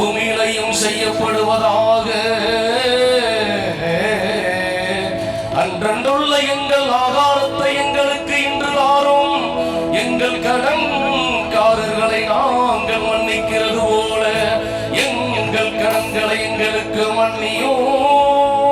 செய்யப்படுவதாக. அன்றன்றுள்ள எங்கள் ஆகாரத்தை எங்களுக்கு இன்று தாரும். எங்கள் கடன்காரர்களை நாங்கள் மன்னிக்கிறது போல எங்கள் கடன்களை எங்களுக்கு மன்னியும்.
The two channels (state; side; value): identical; both; correlation 1.00